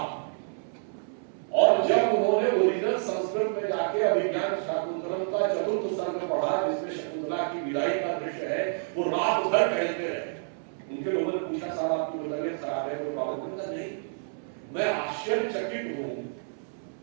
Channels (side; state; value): left; silent; 59 dB below the other